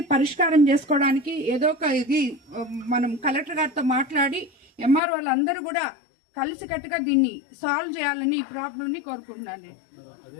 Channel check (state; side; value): drops out; right; at 5.0 s